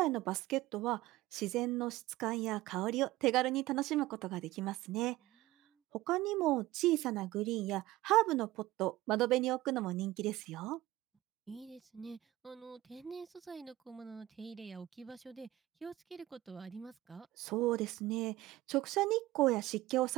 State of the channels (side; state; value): left; quieter; 16.9 dB